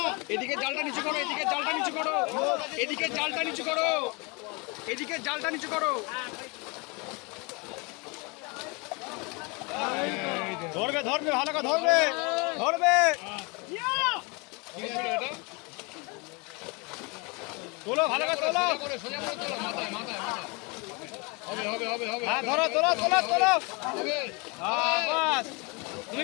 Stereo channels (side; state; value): right; quieter; 29.4 dB